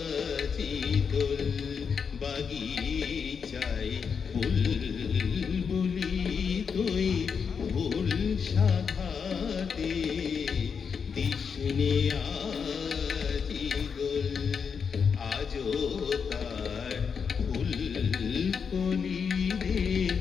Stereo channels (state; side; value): quieter; right; 6.3 dB